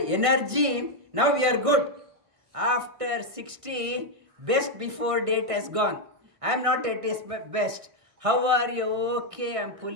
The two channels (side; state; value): left; late; 1.6 ms